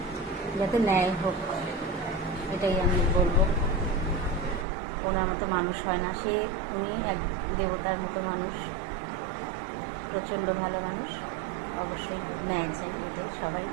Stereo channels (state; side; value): drops out; left; at 4.7 s